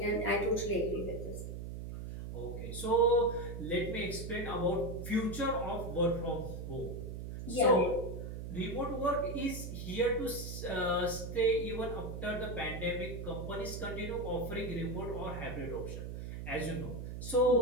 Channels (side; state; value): right; noise; hum, 7 dB below the sound